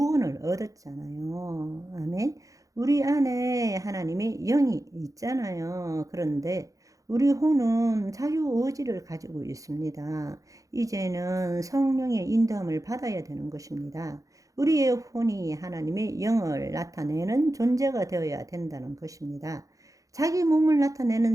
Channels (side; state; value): left; late; 0.16 ms